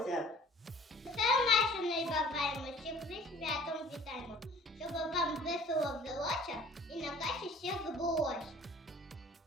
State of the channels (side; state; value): both; normal; correlation 0.50